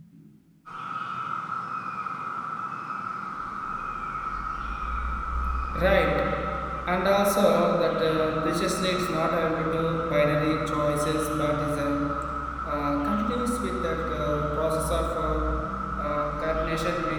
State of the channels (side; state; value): both; identical; correlation 1.00